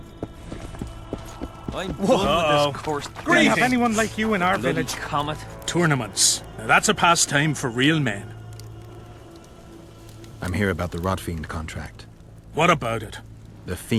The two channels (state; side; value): identical; both; correlation 1.00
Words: I'm done with this course. Do we have anyone like you in our Bloody village? comet. Tournaments. Now that's a pastime for real men. I'm here about the Rotfiend contract. What about it? The